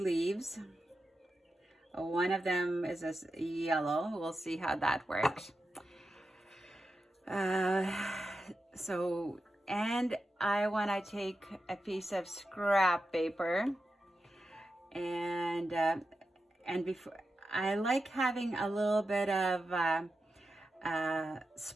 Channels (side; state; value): both; normal; correlation 0.90